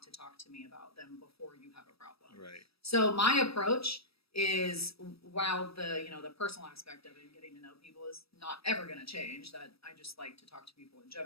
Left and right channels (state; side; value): late; right; 0.77 ms